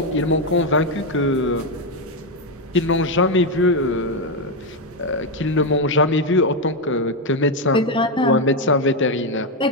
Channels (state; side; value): normal; both; correlation 0.05